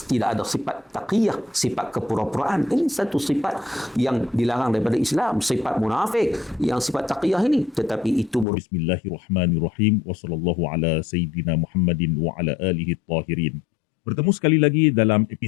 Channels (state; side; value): drops out; right; at 8.5 s